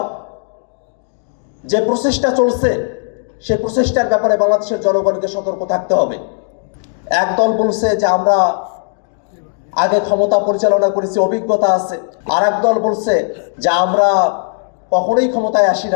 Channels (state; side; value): silent; right; 69 dB below the other